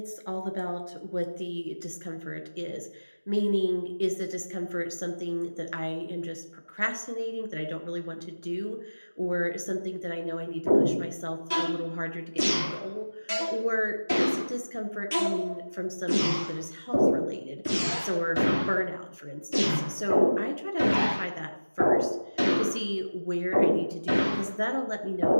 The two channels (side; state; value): both; inverted; correlation -1.00